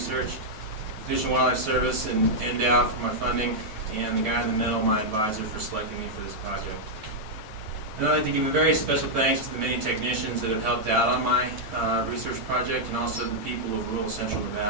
Fish and Wildlife Service and NDOW for my funding, and the guy in the middle, my advisor, for selecting me for this project. And I'd like to give a very special thanks to the many technicians that have helped out on my research project, and also the people of rural central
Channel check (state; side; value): late; left; 9.3 ms